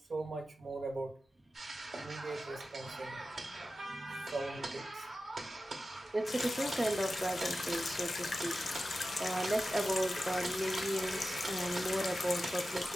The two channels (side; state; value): both; normal; correlation 0.93